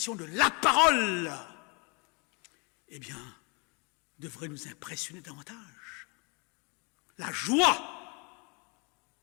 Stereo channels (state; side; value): quieter; right; 31.9 dB